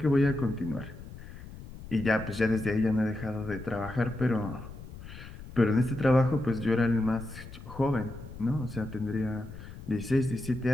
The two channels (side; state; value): left; noise; rumble, 14 dB below the sound